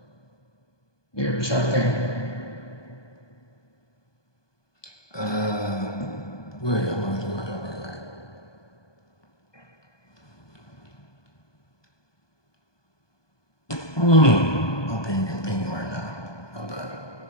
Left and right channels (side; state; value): right; late; 1.2 ms